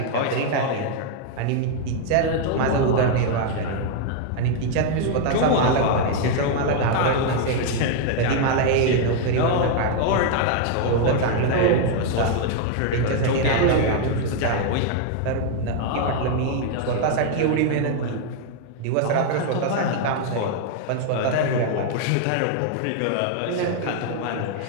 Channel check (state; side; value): different; both; correlation 0.00